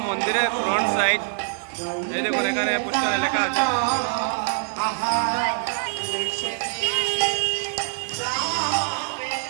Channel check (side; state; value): left; silent; 62 dB below the other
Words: মন্দিরের ফ্রন্ট সাইড। এই দেখুন, এখানে পোস্টারে লেখা আছে।